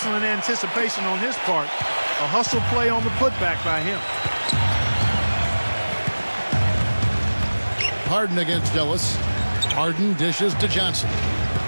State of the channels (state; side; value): inverted; both; correlation -1.00